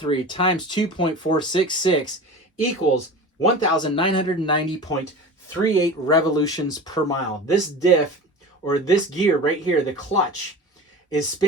times 2.466 equals 1,990.38 revolutions per mile. This diff, or this gear right here, the clutch, is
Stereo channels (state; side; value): normal; both; correlation 0.34